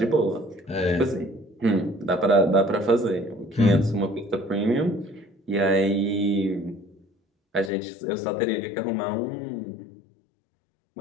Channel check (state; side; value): drops out; right; at 7.7 s